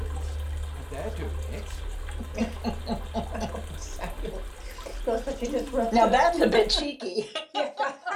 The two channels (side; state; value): both; identical; correlation 1.00